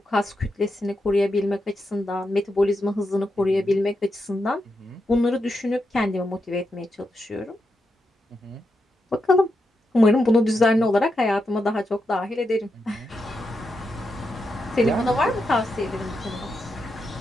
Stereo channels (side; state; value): both; normal; correlation 0.85